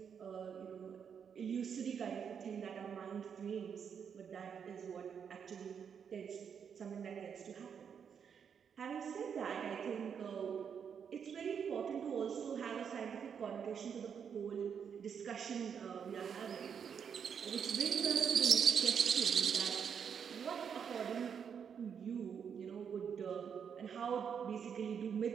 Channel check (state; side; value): quieter; left; 7.3 dB